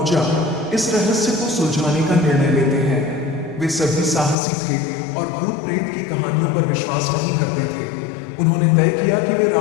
इस रहस्य को सुलझाने का निर्णय लेते हैं। वे सभी साहसी थे और भूत प्रेत की कहानियों पर विश्वास नहीं करते थे। उन्होंने तय किया कि वे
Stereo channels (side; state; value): right; drops out; at 4.4 s